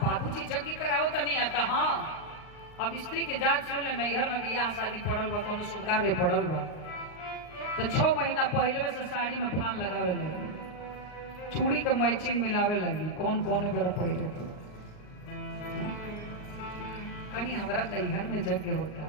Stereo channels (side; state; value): right; late; 38 ms